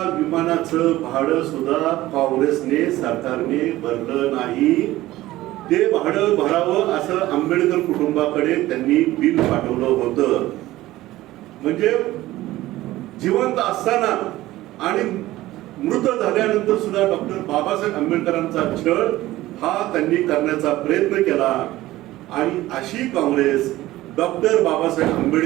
विमानाचं भाडं सुद्धा काँग्रेसने सरकारने भरलं नाही. ते भाडं भरावं असं आंबेडकर कुटुंबाकडे त्यांनी बिल पाठवलं होतं. म्हणजे जिवंत असताना आणि मृत झाल्यानंतर सुद्धा डॉक्टर बाबासाहेब आंबेडकरांचा छळ हा त्यांनी करण्याचा प्रयत्न केला. आणि अशी काँग्रेस डॉक्टर बाबासाहेब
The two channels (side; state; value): left; quieter; 16.5 dB